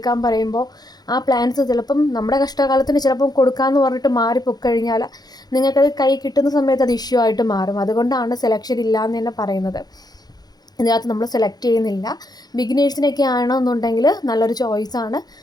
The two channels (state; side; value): late; right; 0.19 ms